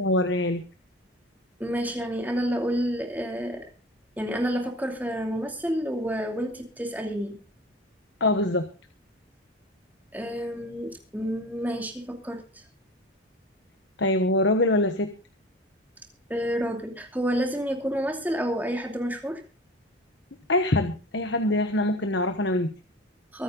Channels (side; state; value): both; normal; correlation 0.37